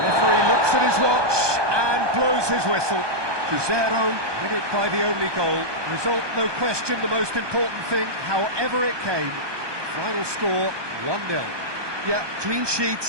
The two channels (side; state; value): left; late; 1.2 ms